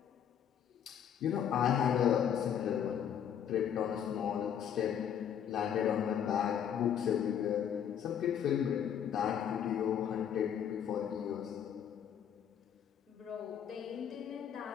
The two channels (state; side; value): quieter; right; 8.9 dB